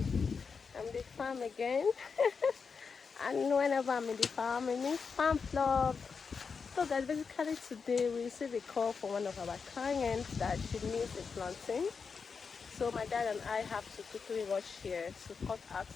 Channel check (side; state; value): right; quieter; 5.5 dB